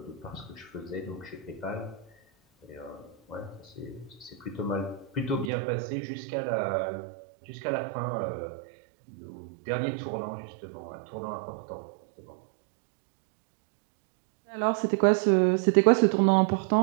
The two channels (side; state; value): left; drops out; at 5.5 s